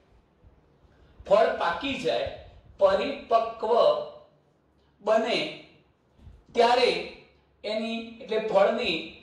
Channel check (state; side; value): identical; both; correlation 1.00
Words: ફળ પાકી જાય, પરિપક્વ બને, ત્યારે એની એટલે ફળની